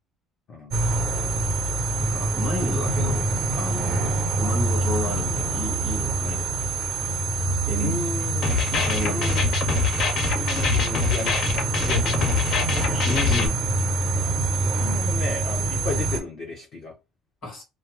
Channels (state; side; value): normal; both; correlation 0.54